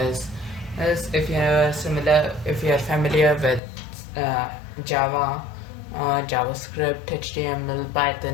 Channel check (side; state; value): right; drops out; at 3.6 s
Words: As if you are familiar with Java, JavaScript, HTML,